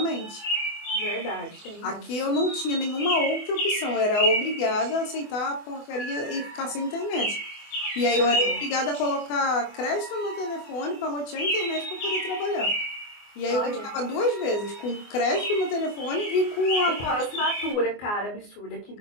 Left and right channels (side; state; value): right; late; 24 ms